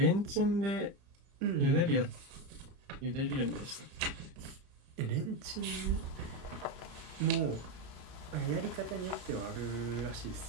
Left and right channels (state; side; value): late; left; 30 ms